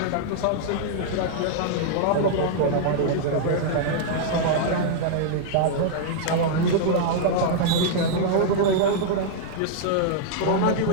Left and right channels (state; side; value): different; both; correlation -0.01